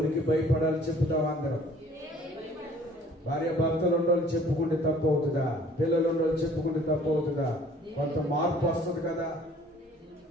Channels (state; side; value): normal; both; correlation 0.54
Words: భయపడాలి చెప్పుతామా? అందరం భార్య భర్తలు ఉండోళ్ళు చెప్పుకుంటే తప్పు అవుతుందా? పిల్లలు ఉండోళ్ళు చెప్పుకుంటే తప్పు అవుతుందా? కొంత మార్పు వస్తుంది కదా,